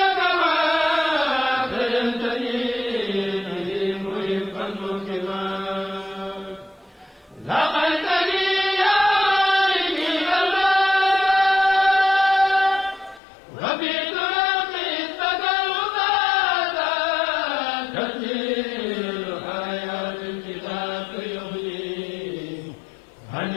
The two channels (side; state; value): right; drops out; at 13.2 s